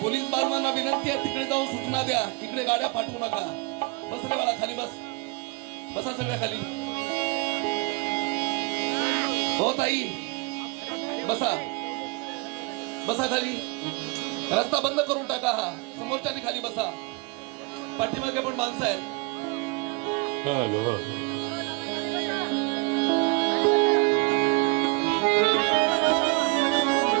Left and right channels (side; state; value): left; quieter; 28.5 dB